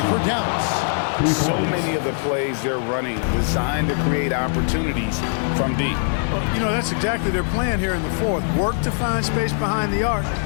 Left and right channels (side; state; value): right; silent; digital silence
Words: for Dallas. So many of the plays they're running designed to create opportunities from deep. You know, that's exactly their plan here in the fourth. Work to find space behind the arc